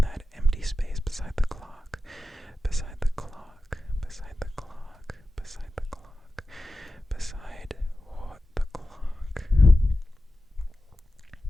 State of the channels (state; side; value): normal; both; correlation 0.93